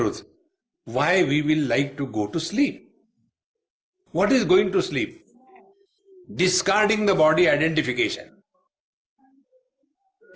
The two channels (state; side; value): identical; both; correlation 1.00